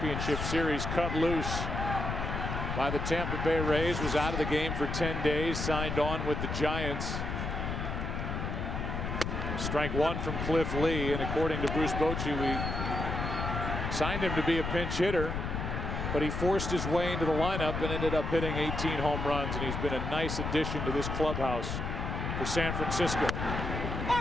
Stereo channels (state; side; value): noise; left; rumble, 3 dB below the sound